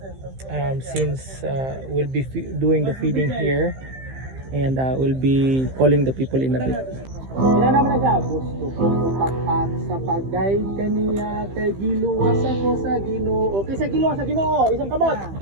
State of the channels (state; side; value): late; left; 15 ms